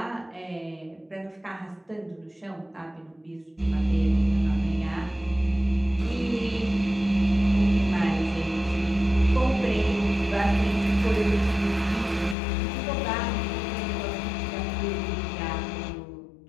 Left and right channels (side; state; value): right; drops out; at 12.4 s